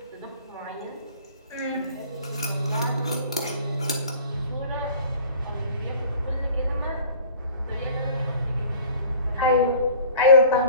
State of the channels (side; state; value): both; inverted; correlation -0.46